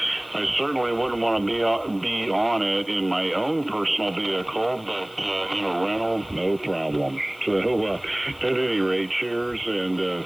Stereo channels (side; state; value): left; noise; hiss, 26 dB below the sound